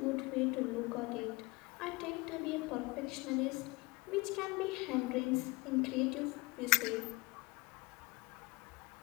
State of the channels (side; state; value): right; quieter; 25.2 dB